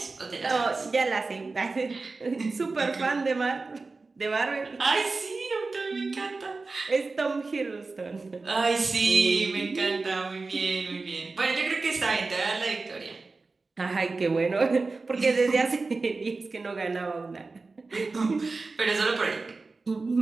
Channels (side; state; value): left; quieter; 3.8 dB